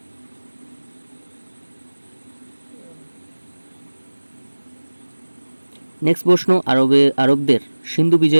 নেক্সট প্রশ্ন, আরবদের সিন্ধু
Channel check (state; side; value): inverted; both; correlation -1.00